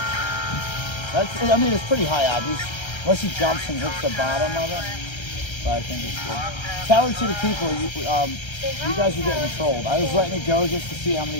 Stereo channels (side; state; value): right; late; 1.3 ms